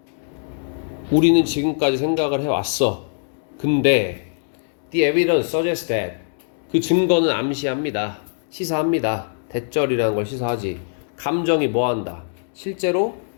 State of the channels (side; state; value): right; silent; 64 dB below the other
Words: 우리는 지금까지 생각을 해왔어. 근데 the evidence suggests that, 그 증거는 암시합니다. 시사합니다. 대절이라는 걸 시사하지. 감정이 뭐한다? 실제로